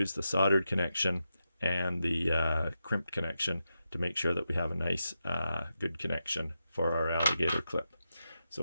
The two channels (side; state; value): both; inverted; correlation -0.88